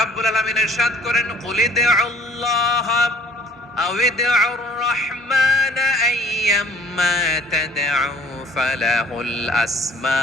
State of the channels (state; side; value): normal; both; correlation 0.55